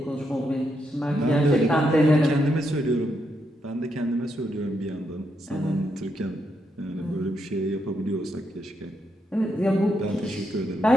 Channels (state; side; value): normal; both; correlation 0.80